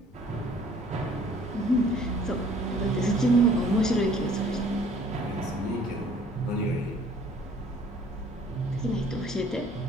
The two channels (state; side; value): normal; both; correlation 0.56